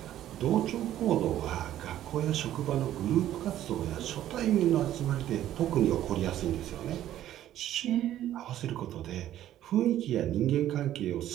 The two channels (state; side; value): quieter; left; 12.5 dB